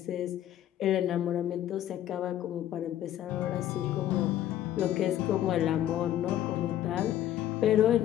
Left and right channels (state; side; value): quieter; right; 12.1 dB